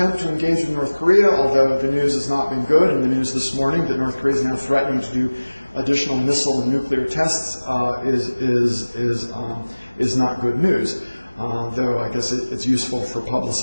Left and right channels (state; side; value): inverted; both; correlation -1.00